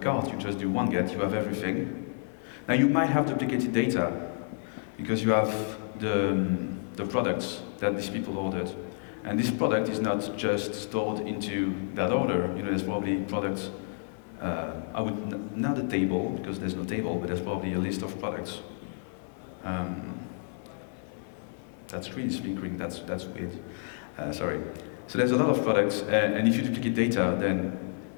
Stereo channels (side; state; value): right; silent; 56 dB below the other